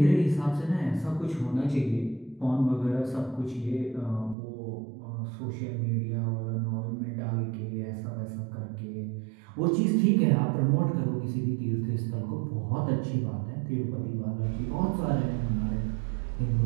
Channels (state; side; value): drops out; left; at 4.4 s